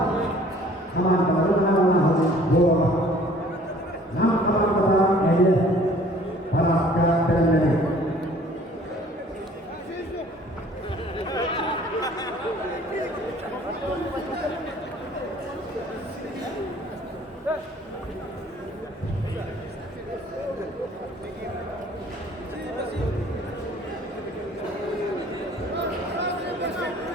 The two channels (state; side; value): normal; both; correlation 0.53